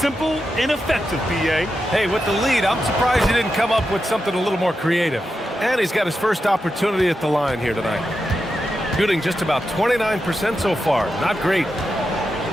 and effective, BA. Hey, with the lead, I'm surprised he didn't come up with something a little more creative. And he's got his first opportunity at the line here tonight. Shooting just about 29% so far. Not great.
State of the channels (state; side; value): normal; both; correlation 0.88